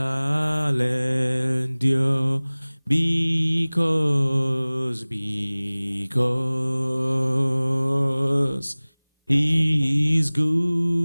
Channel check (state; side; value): inverted; both; correlation -1.00